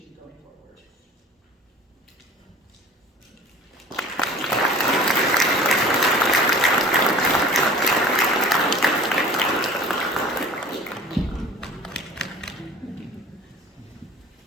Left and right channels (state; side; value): normal; both; correlation 0.43